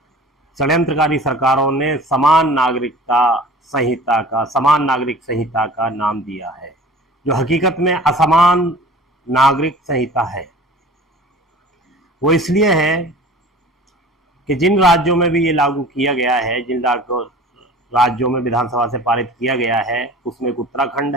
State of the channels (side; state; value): both; normal; correlation 0.43